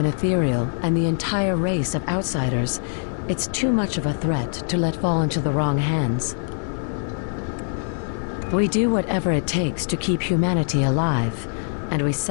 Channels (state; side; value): silent; right; 63 dB below the other